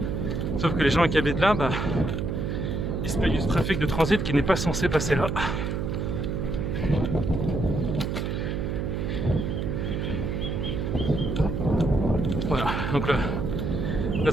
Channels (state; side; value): noise; right; hum, 2 dB below the sound